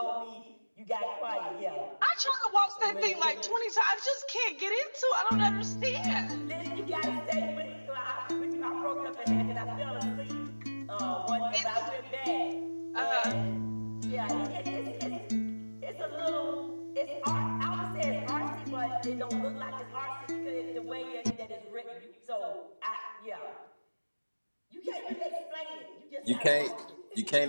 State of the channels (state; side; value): inverted; both; correlation -1.00